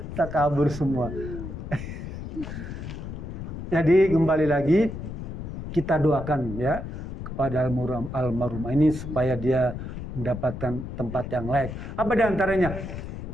Tak kabur semua. Jadi kembali lagi kita doakan, ya, kepada almarhumah ini supaya dia mendapatkan tempat yang layak. Apa di antaranya?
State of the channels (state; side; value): noise; left; rumble, 8 dB below the sound